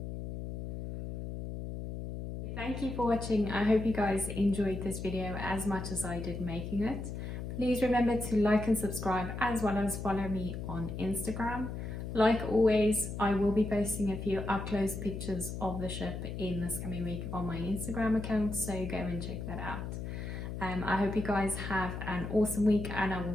Thank you for watching. I hope you guys enjoyed this video as much as I did making it. Please remember to like and subscribe, as well as follow me on Instagram. Like always, I will be posting a few up-close pictures of the ship in this coming week on my Instagram account, so go and check that out. I hope you guys have an awesome week, and I will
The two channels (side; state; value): left; noise; hum, 6 dB below the sound